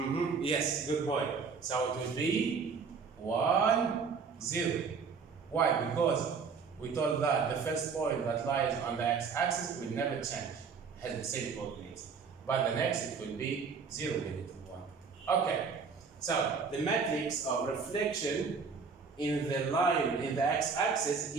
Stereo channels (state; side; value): quieter; left; 5.5 dB